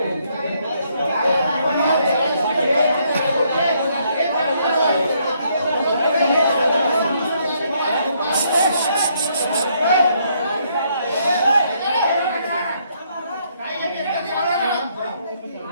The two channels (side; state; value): both; inverted; correlation -0.71